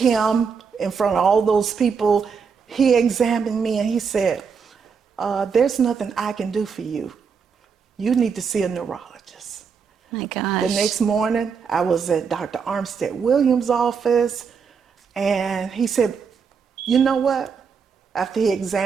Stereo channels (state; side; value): quieter; left; 6.0 dB